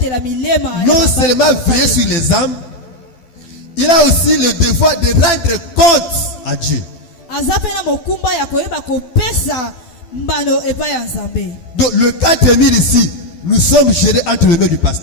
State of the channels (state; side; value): late; right; 12 ms